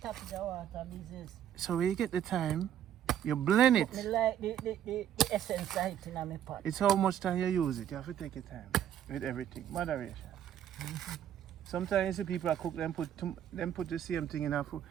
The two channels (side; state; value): left; quieter; 10.2 dB